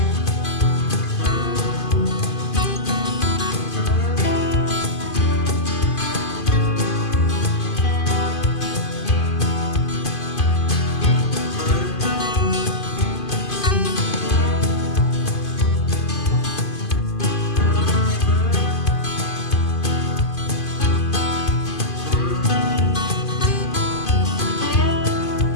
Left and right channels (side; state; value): right; late; 2.5 ms